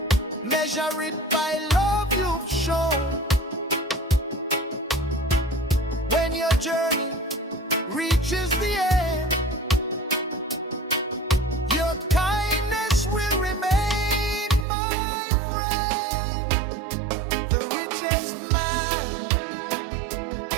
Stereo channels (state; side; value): drops out; left; at 14.7 s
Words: Measure it by love you've shown. When your journey reaches the end, your kindness will remain, my friend. The richest man